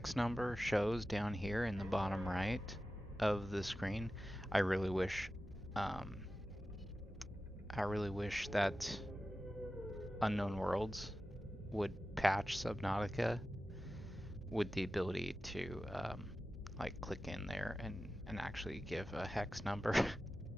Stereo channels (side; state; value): both; normal; correlation 0.94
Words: number shows down here in the bottom right of the screen. I really wish that Unknown Worlds would patch Subnautica with the ability to like click in there and actually give a hex number